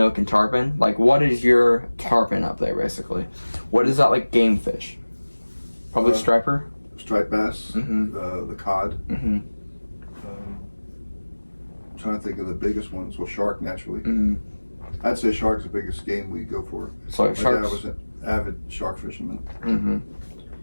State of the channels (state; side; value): inverted; both; correlation -1.00